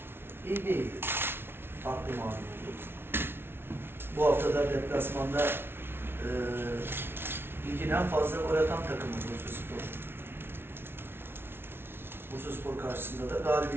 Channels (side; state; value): left; late; 0.11 ms